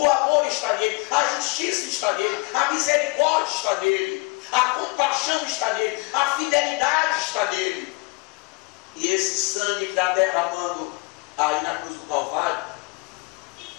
amor está nele, a justiça está nele, a misericórdia está nele, a compaixão está nele, a fidelidade está nele. E esse sangue que está derramando aí na cruz do Calvário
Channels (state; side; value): quieter; right; 28.9 dB